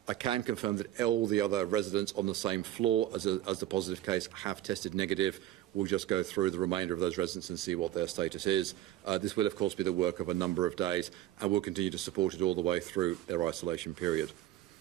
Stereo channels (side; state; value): left; quieter; 13.5 dB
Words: I can confirm that all the other residents on the same floor as the positive case have tested negative. We'll just go through the remainder of those residents and see what their status is. This will, of course, be the work of a number of days, and we'll continue to support it all the way through their isolation period.